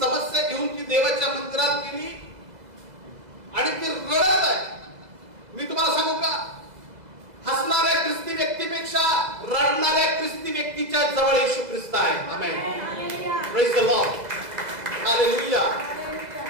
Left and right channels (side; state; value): left; late; 2.0 ms